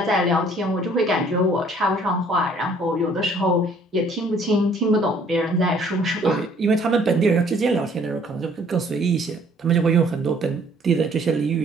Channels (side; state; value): both; normal; correlation 0.59